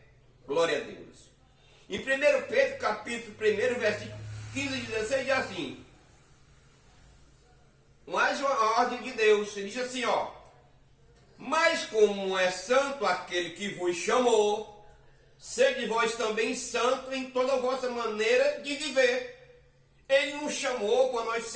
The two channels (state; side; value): identical; both; correlation 1.00